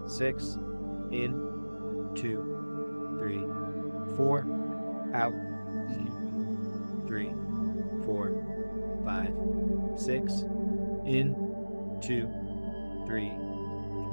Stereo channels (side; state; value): both; inverted; correlation -1.00